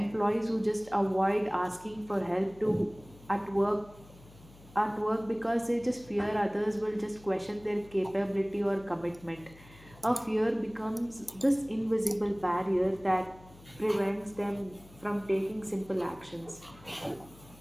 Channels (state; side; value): noise; left; hum, 22 dB below the sound